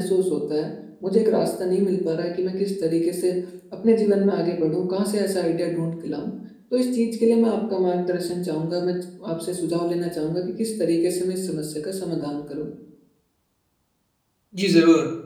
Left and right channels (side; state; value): both; identical; correlation 1.00